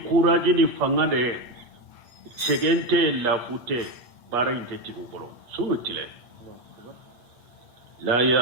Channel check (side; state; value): left; late; 8.5 ms